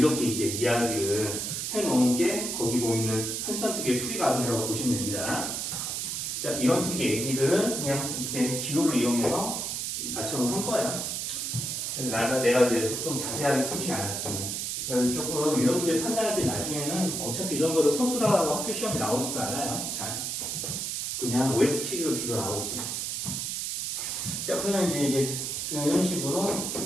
이제 이야기를 해놓은 게 거기 보이는 33쪽의 풀이 과정이라고 보시면 됩니다. 자, 이런 식의 얘기들은 그냥 이렇게 기호를 이용해서 맞춰놓은 거예요. 그래서 내가 이제 좀 자세하게 쓰진 않았지만. 그래서 조금 이런 문제 판단할 때 나중에는 어차피 이런 거를 서술하고 학교 시험에 나오지도 않아요. 잘. 그냥 OS 퀴즈로 주로 나오지. 자, 그러면 이제 이런 식으로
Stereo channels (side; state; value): right; noise; hiss, 2 dB below the sound